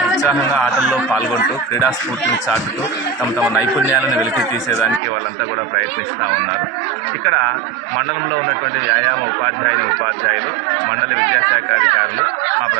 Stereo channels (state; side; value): drops out; left; at 5.0 s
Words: ఉత్సాహంగా ఆటల్లో పాల్గొంటూ క్రీడా స్ఫూర్తిని చాటుతూ తమ నైపుణ్యాలను వెలికి తీసేదానికి వాళ్ళంతా కూడా ప్రయత్నిస్తూ ఉన్నారు. ఇక్కడ మండలంలో ఉన్నటువంటి వ్యాయామ ఉపాధ్యాయులు మండల విద్యాశాఖ అధికారులు మా